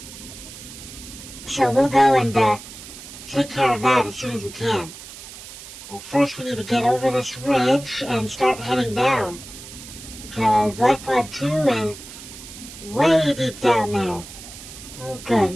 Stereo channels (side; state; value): right; noise; hiss, 15 dB below the sound